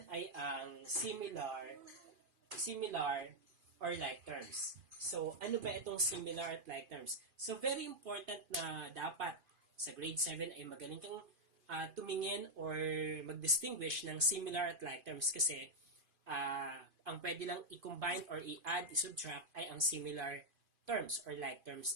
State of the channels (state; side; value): late; left; 2.5 ms